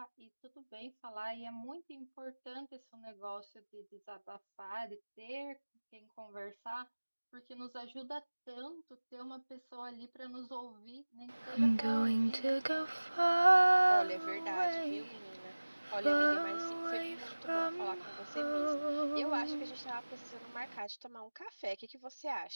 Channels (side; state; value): both; inverted; correlation -1.00